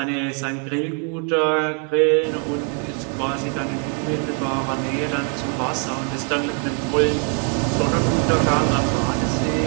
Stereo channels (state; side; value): quieter; left; 38.5 dB